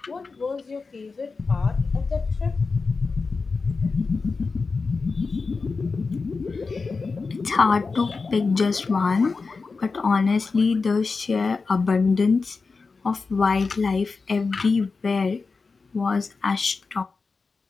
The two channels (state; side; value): quieter; right; 4.4 dB